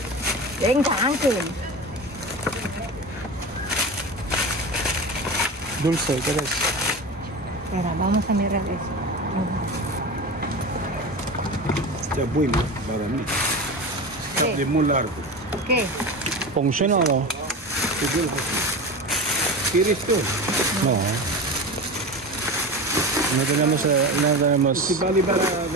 Venga, Ángel. Dulce, ¿qué es? Mira, vamos a mirar eso. Está bueno para mí. Está ¿Qué? de muy largo. ¿Qué? ¿Funciona o no? ¿Quieres tú? No. No tenemos, no tenemos. Si vale para la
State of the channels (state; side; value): normal; both; correlation 0.28